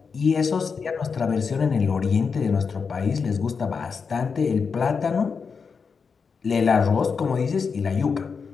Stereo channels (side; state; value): right; quieter; 5.5 dB